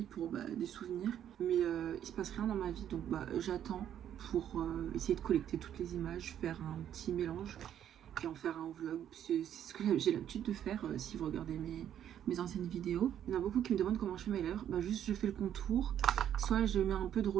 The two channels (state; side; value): quieter; left; 10.1 dB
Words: pour des souvenirs. Mais il se passe rien dans ma vie donc j'attends pour essayer de collecter toutes les images, faire un petit mélange et en faire un vlog. C'est ce que j'ai l'habitude de faire si vous regardez mes anciennes vidéos. Il y en a beaucoup qui me demandent comment je fais mes lèvres. Juste je fais le contour. Soit je mets un peu de